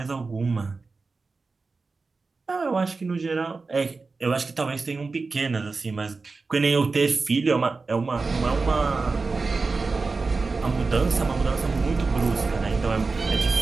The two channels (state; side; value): quieter; left; 4.1 dB